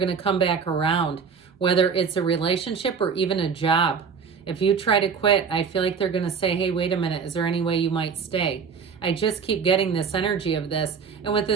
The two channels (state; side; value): quieter; left; 6.1 dB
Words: to come back around, whether it's a relationship or even a job. If you try to quit, I feel like they're going to say, hey, wait a minute, is there any way you might stay? I just keep getting this energy of this. And with